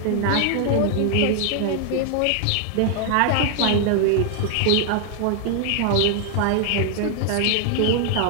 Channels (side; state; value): both; different; correlation 0.00